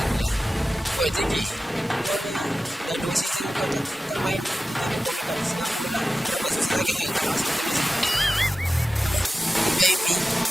kalian. Oi, Teki. Kau ni dah 2 season kau tak main, tiba-tiba kau main kat Singapura pula. Kenapa? Susah sangat kau nak masuk tim Malaysia? Apa? Ikut VIP?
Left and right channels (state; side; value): normal; both; correlation 0.94